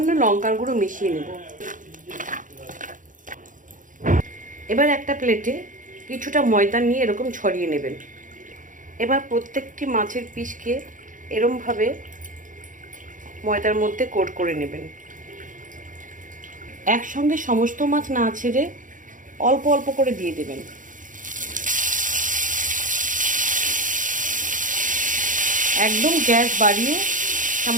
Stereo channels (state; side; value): late; left; 0.38 ms